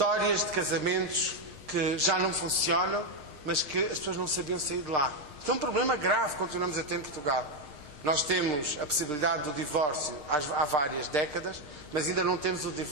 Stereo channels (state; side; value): late; left; 6.6 ms